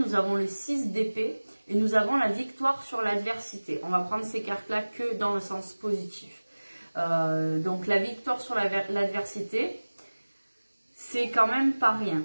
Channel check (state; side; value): inverted; both; correlation -1.00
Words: avons le 6 d'épée et nous avons la victoire sur l'adversité. On va prendre ces cartes-là que dans le sens positif. Donc la victoire sur l'adversité, c'est quand même pas rien.